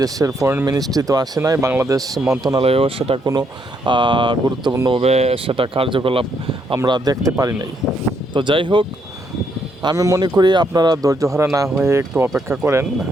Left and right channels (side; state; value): both; normal; correlation 0.74